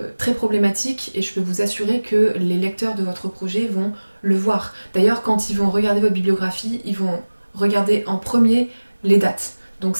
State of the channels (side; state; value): both; inverted; correlation -1.00